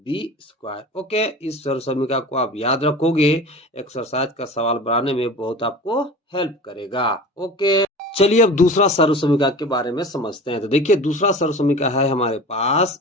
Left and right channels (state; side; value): normal; both; correlation 0.36